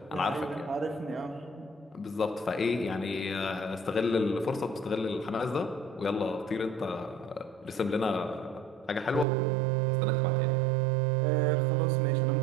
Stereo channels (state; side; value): drops out; left; at 9.2 s